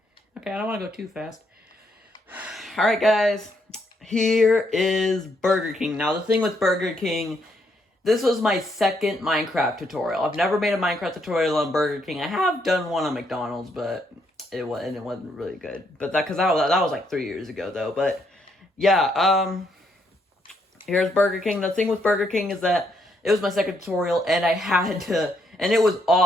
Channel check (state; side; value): normal; both; correlation 0.74